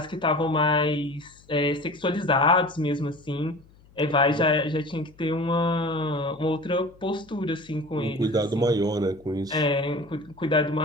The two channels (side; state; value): left; noise; hum, 27 dB below the sound